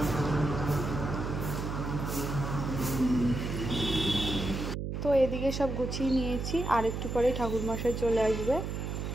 তো এদিকে সব গুছিয়ে নিয়েছি আর একটু পরে ঠাকুরমশাই চলে আসবে।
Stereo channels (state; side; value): noise; right; hum, 4 dB below the sound